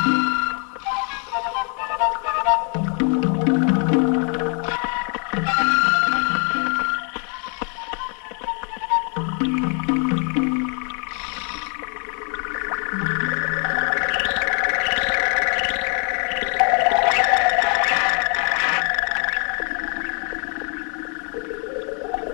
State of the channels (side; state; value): right; quieter; 38.3 dB